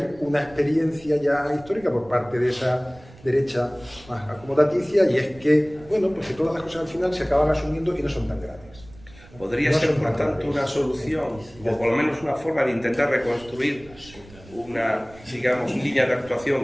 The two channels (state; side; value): noise; right; rumble, 22 dB below the sound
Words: una experiencia ya histórica por parte de esa derecha más acomodaticia y es que, bueno, pues que todas las cosas al final se acaban asumiendo y no son tan graves. ¿Podría ser, por tanto, una solución, o por lo menos una forma de intentar reconstruir una, digamos, línea de